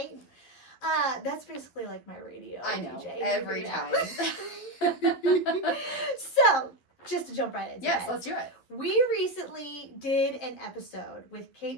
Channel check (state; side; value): late; right; 12 ms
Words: That's basically like my radio. I know, DJ. every time. So, just to jump right into it. Yes, let's do it. We recently did an episode with